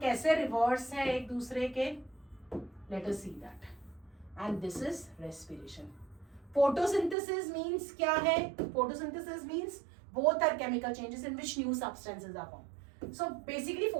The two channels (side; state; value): left; drops out; at 7.2 s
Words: कैसे रिवर्स है एक दूसरे के, let us see that. And this is respiration. Photosynthesis means क्या है, photosynthesis means both are chemical changes in which new substances are formed. So basically